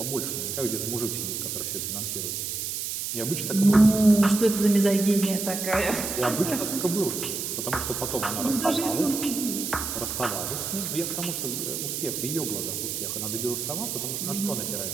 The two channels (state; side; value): noise; right; hiss, 4 dB below the sound